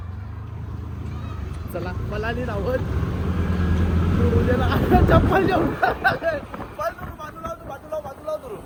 चला मला नाही राहत. चप्पल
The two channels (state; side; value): identical; both; correlation 1.00